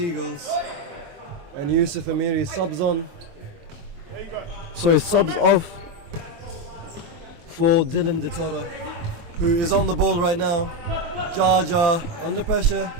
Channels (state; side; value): late; left; 23 ms